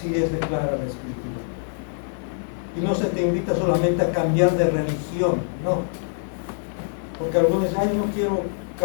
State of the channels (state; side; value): silent; right; digital silence